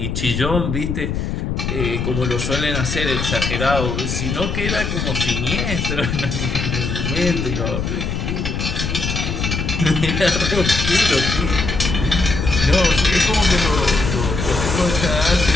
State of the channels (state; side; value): noise; left; rumble, 2 dB below the sound